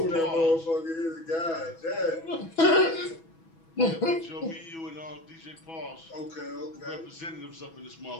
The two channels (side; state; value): right; late; 6.1 ms